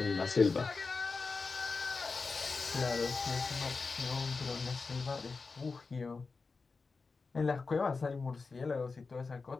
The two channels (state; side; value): quieter; right; 4.3 dB